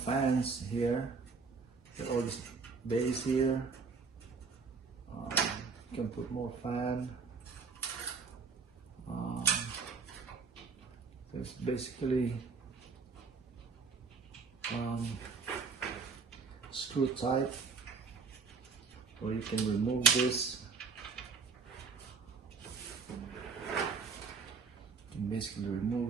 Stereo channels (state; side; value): quieter; left; 4.9 dB